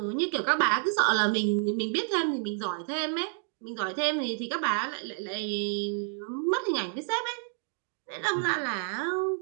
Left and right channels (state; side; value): silent; left; 57 dB below the other